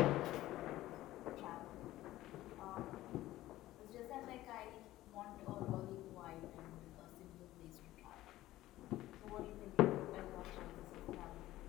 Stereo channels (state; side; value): quieter; right; 15.7 dB